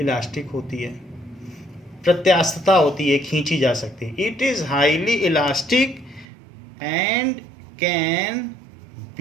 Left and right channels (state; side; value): drops out; left; at 6.2 s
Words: होती है, प्रत्यास्थता होती है, खींची जा सकती है। It is highly elastic and can